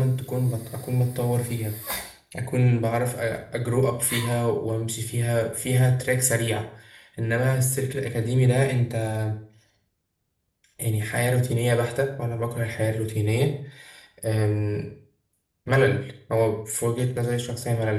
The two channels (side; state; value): both; identical; correlation 1.00